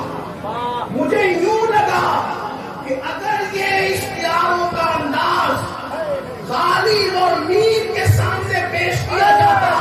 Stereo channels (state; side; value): identical; both; correlation 1.00